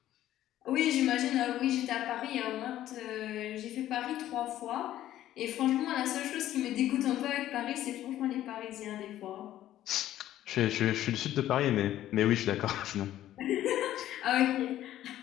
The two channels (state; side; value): quieter; right; 13.0 dB